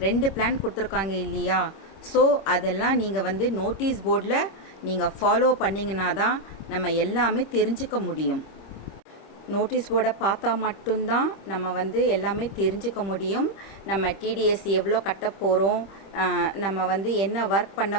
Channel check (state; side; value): late; right; 26 ms